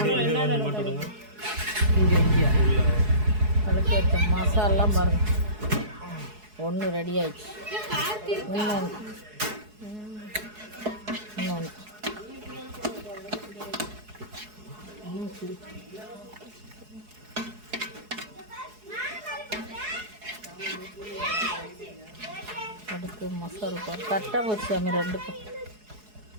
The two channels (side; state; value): left; late; 4.7 ms